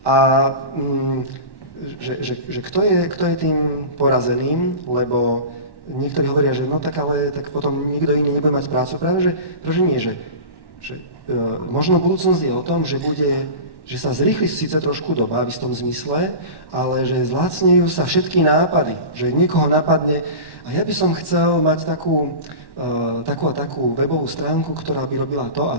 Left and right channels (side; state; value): right; late; 1.1 ms